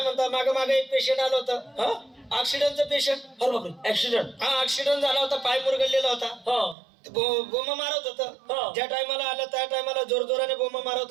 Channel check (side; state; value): left; drops out; at 6.8 s